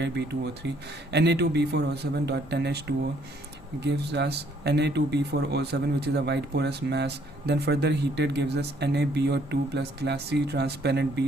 B2O3. Na2B4O7.10H2O gives us Na2B4O7, which is a white porous mass. Then further heated gives us NaBO2 plus glassy transparent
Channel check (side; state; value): both; normal; correlation 0.65